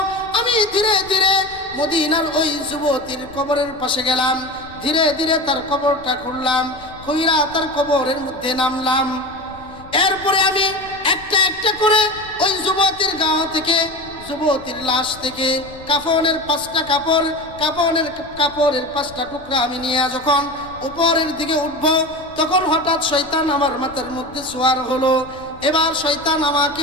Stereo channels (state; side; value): noise; left; rumble, 20 dB below the sound